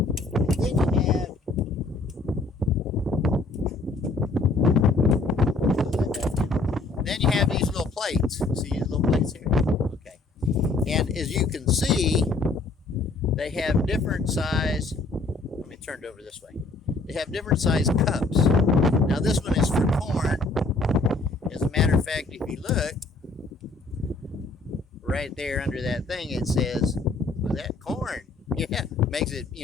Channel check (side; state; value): right; quieter; 3.4 dB